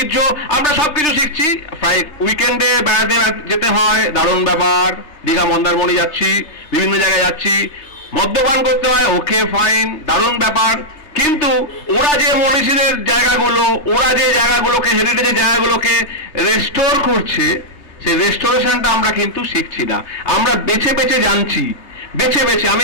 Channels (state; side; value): late; right; 3.3 ms